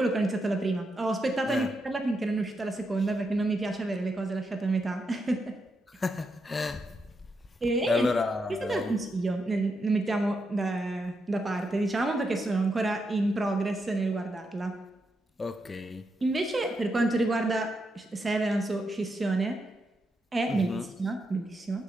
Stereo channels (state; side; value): normal; both; correlation 0.83